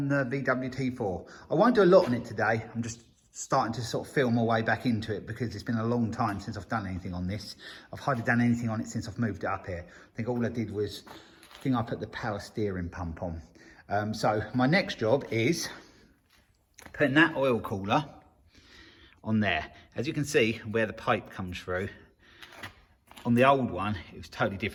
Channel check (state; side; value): identical; both; correlation 1.00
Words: the Veedub T4. I won't do a lot on it today. I'm just starting to sort of feel my way back into it because it's been a long time since I've done anything on this. I've hardly done anything on it since I've moved it up here. I think all I did was, I put the power steering pump on. So my next job is putting that oil cooler on there. As you can see where the pipe comes through, on the old one, it was totally